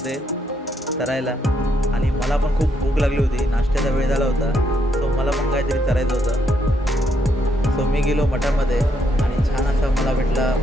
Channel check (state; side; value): normal; both; correlation 0.75